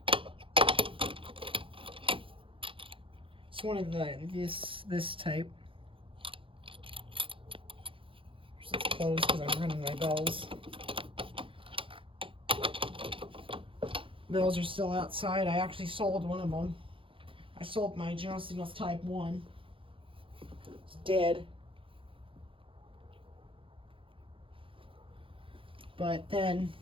It's one of this type. It's closed because I'm running my bells. Bells are still outside. I actually sold one of them. I sold my General Signals Type 1. It's dead. But then,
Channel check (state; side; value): late; left; 0.25 ms